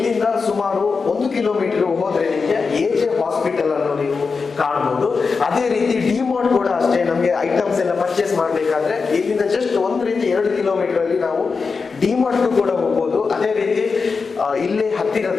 ಸುಮಾರು 1 ಕಿಲೋಮೀಟರ್ ಹೋದ್ರೆ ನಿಮಗೆ AJ ಹಾಸ್ಪಿಟಲ್ ಅನ್ನು ನೀವು ಕಾಣ್ಬೋದು. ಅದೇ ರೀತಿ ಡಿಮಾರ್ಟ್ ಕೂಡ ಅಷ್ಟೇ, ನಮಗೆ ಐಟಮ್ಸ್ ಎಲ್ಲ ಪರ್ಚೇಸ್ ಮಾಡಬೇಕಾದ್ರೆ ಇಲ್ಲಿಂದ ಜಸ್ಟ್ 1-2 ಕಿಲೋಮೀಟರ್ ಅಲ್ಲಿ ನಾವು ಡಿಮಾರ್ಟ್ಗೂ ಕೂಡ ಹೋಗ್ಬೋದು. ಅದೇ ರೀತಿ ಇಲ್ಲೇ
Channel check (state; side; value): quieter; right; 4.8 dB